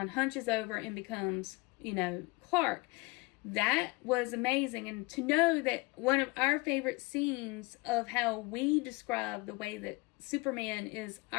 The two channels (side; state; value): right; quieter; 24.8 dB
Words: hunches over, and becomes Clark. That was amazing. And to know that one of our favorite scenes of how we describe the way that Superman is